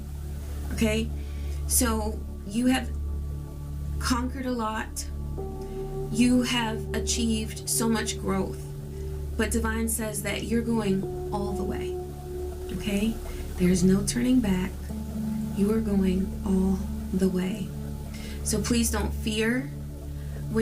Okay? So you have conquered a lot. You have achieved so much growth. But Divine says that you're going all the way. Okay? There's no turning back. You are going all the way. So please don't fear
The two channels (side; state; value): both; identical; correlation 1.00